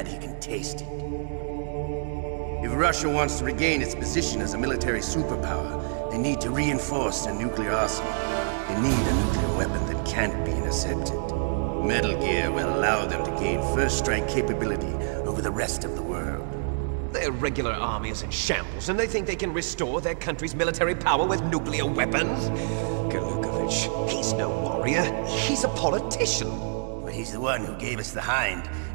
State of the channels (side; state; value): left; silent; digital silence